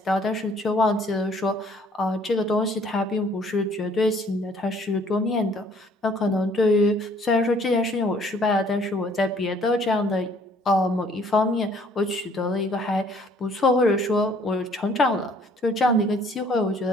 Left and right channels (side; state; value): both; normal; correlation 0.59